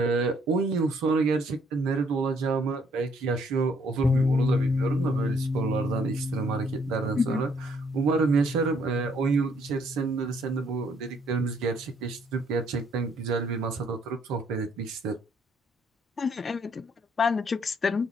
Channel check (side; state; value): both; normal; correlation 0.67